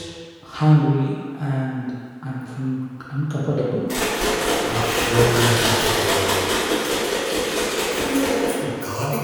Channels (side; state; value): both; identical; correlation 1.00